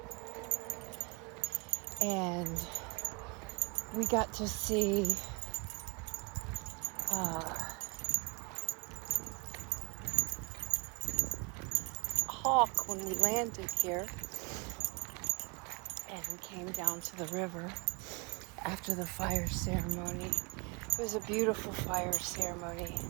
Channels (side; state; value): left; quieter; 29.7 dB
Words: And we got to see hawk when we landed here, and we came down to the river after the fire ceremony. It was a beautiful fire ceremony.